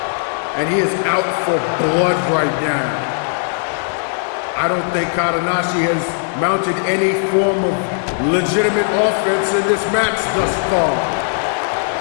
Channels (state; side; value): silent; right; digital silence